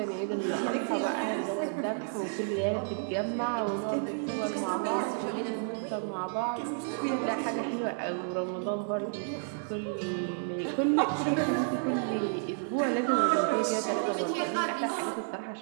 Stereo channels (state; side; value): silent; left; digital silence